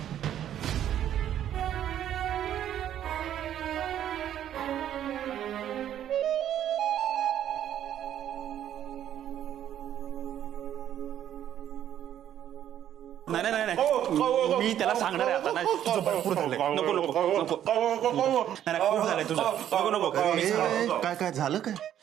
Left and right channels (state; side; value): quieter; left; 10.8 dB